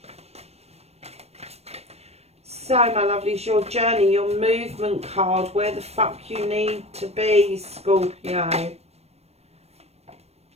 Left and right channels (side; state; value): left; late; 0.31 ms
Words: So, my lovelies, your journey, your movement card, where the fuck you need to be, Scorpio.